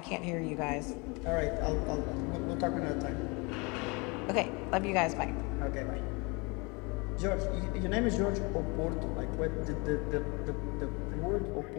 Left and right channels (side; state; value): right; quieter; 28.7 dB